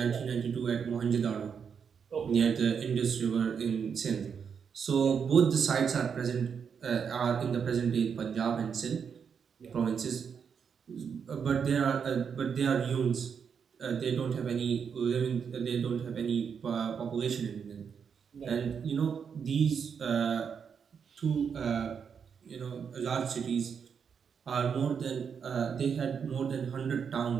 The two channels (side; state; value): left; quieter; 6.8 dB